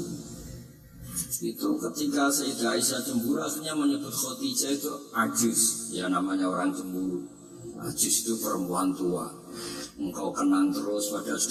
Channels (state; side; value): identical; both; correlation 1.00